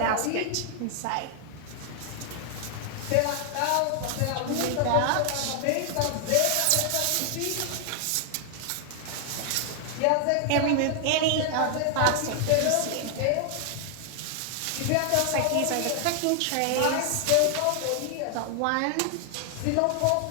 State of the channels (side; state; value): both; different; correlation 0.00